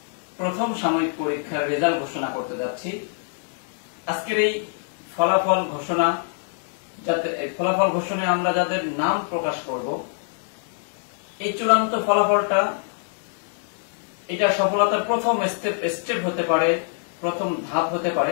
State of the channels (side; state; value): right; silent; digital silence